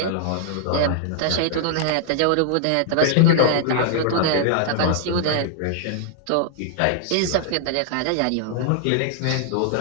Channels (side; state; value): both; different; correlation -0.01